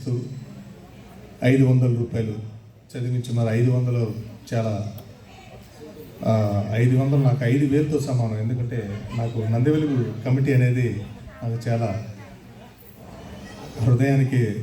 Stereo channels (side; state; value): both; identical; correlation 1.00